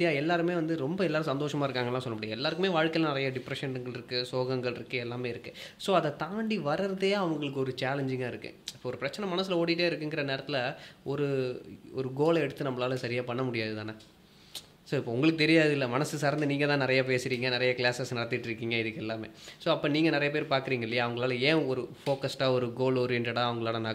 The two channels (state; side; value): identical; both; correlation 1.00